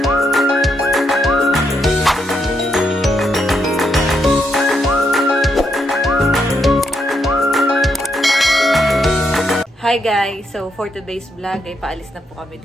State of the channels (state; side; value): normal; both; correlation 0.78